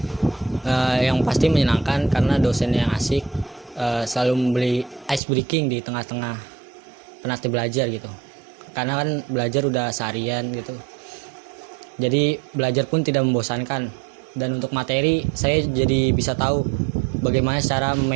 yang pasti menyenangkan karena dosennya yang asik, selalu memberi ice breaking di tengah-tengah penat belajar gitu. Karena kan belajar udah seharian gitu. Jadi belajar pun tidak membosankan, dan untuk materi saya jadi bisa tahu bagaimana cara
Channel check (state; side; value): drops out; left; at 5.2 s